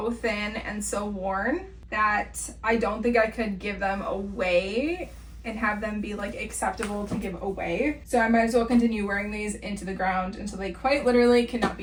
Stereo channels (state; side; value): identical; both; correlation 1.00